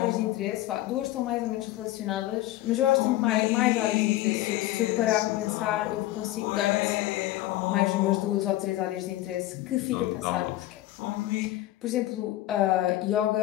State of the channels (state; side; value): quieter; right; 15.8 dB